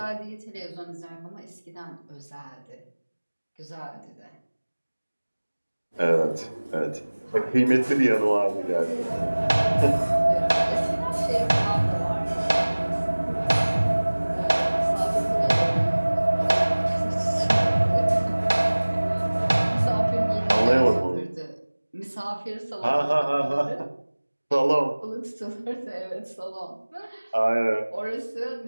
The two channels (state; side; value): inverted; both; correlation -1.00